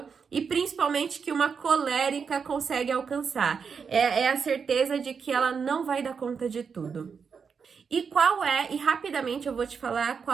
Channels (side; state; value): left; quieter; 6.0 dB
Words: e principalmente que uma colérica, consegue alcançar. É a certeza de que ela não vai dar conta de tudo. E rapidamente eu vou te falar